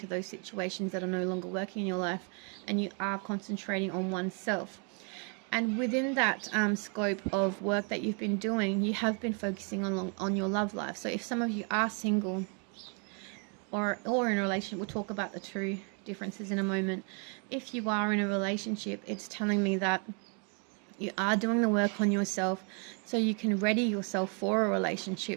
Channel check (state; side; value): quieter; left; 38.3 dB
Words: those situations that are no longer working in your life, and you are concentrating on oneself. And within that scope of work that you've been doing, you have been focusing on your love life. So if some of you are single or in a relationship, we'll talk about the two differences in a moment. If you are in a relationship, it's telling me that you are doing the work on yourself so you can ready yourself for a